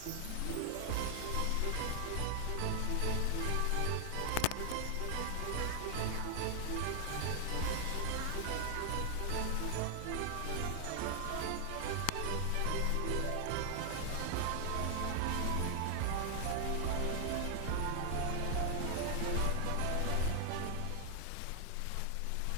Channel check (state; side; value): different; both; correlation 0.00